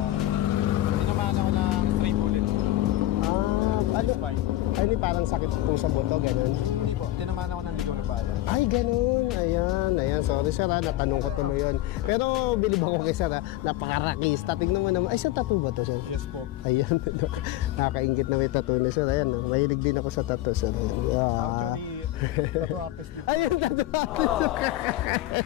Tinamaan ako ng stray bullet sa spine. Ay, parang sakit po sa buto, ganun. Ay, hindi po. Tinamaan ako ng ligaw na bala. Ay, ganun. Ayan. Sorry, sir, natanong ko po yun. Pero bilib ako kay sir, napakarakista. Tingnan mo naman. Ay, sa tattoo ba to, sir? Yes po. Ayan. Nakakaingit na may tattoo ni sir. Ayan, mahilig din ako sa tattoo, sir. Actually, tattoo artist din. Ayan, tattoo artist.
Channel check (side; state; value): right; quieter; 15.3 dB